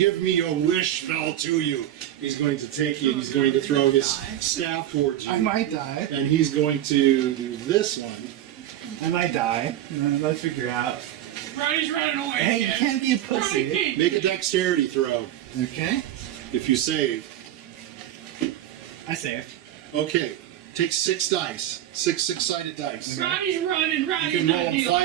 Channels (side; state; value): left; quieter; 12.3 dB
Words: me your wish spell to you. He's going to take you and he's going to throw his staff towards you. might die. And he's going to do this one. I might die. Let's figure out. Roddy's running away. Hey, you again. can't be a Roddy pussy. can't. Make a dexterity throw. Okay. If you save. I saved. Okay. Take 6 dice. 6 6-sided dice. Roddy's running. You Roddy's can not roll dealing